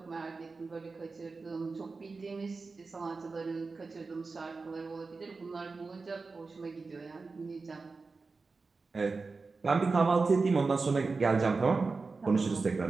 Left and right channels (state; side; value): quieter; left; 4.1 dB